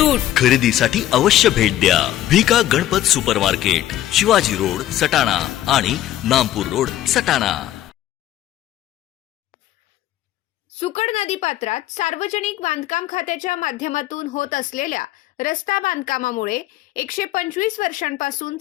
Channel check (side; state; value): right; quieter; 13.4 dB